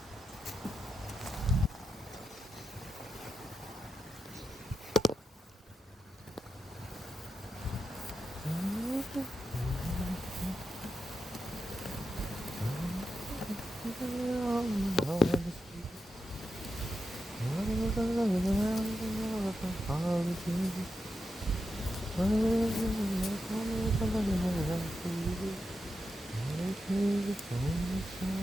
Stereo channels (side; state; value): both; normal; correlation 0.88